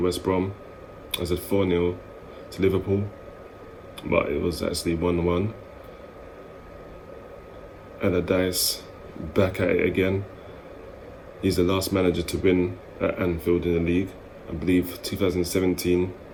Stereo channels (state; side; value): identical; both; correlation 1.00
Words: Brom. I said 4-0 to Liverpool, but it was actually 1-1. Allardyce back at it again. He's the last manager to win at Anfield in the league. I believe 2017,